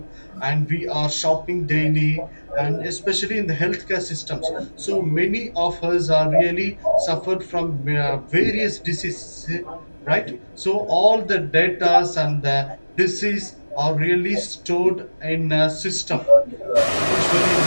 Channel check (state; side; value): inverted; both; correlation -1.00